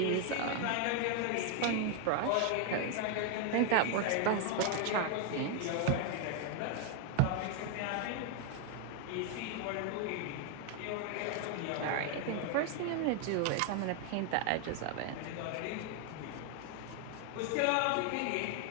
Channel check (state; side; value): different; both; correlation 0.00